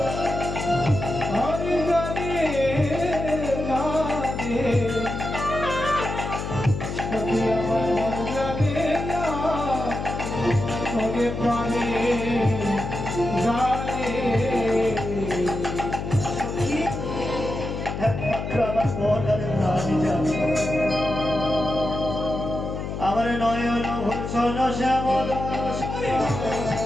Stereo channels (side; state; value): left; noise; hum, 5 dB below the sound